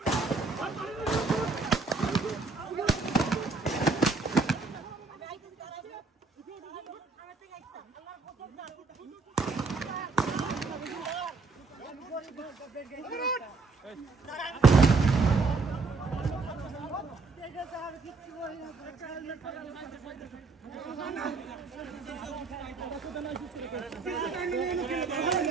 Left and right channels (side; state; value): left; quieter; 4.2 dB